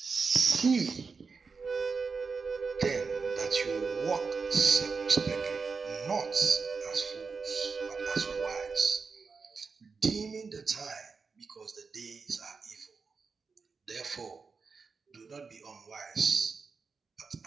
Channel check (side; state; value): left; quieter; 4.9 dB